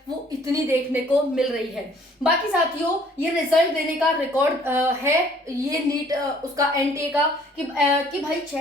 वो इतनी देखने को मिल रही है। बाकी साथियों, ये रिजल्ट देने का रिकॉर्ड है ये नीट उसका एनटीए का कि भाई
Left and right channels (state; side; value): normal; both; correlation 0.58